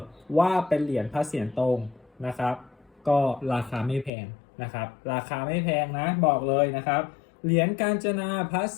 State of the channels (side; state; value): right; drops out; at 4.1 s